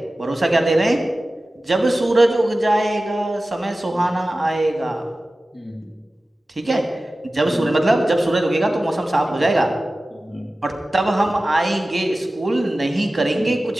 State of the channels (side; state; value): both; normal; correlation 0.96